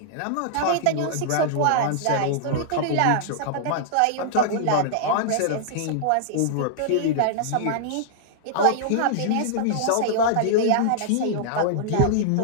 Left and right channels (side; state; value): both; different; correlation -0.01